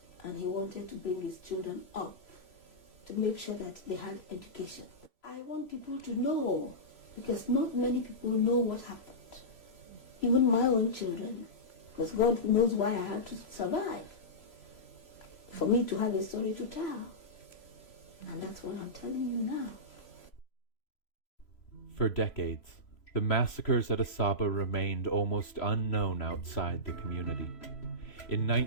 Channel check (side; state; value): right; late; 3.0 ms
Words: and he wanted to bring his children up to make sure that they had education. I want people to know, because not many people know what happened, even my own children, because God knows why I had to survive, for me to have a story to tell. And that's what I'm telling you now. For decades, the massacres at Asaba remained almost unknown outside the community. In